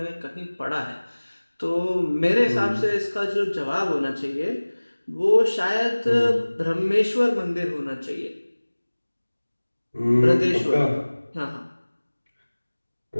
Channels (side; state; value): both; inverted; correlation -1.00